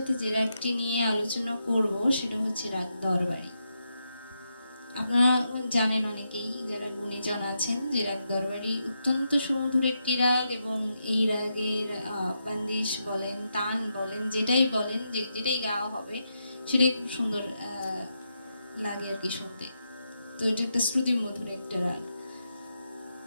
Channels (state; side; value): inverted; both; correlation -0.84